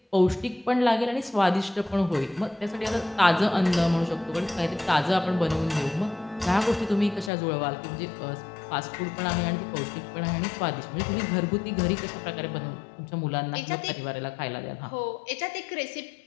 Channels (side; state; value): right; drops out; at 7.3 s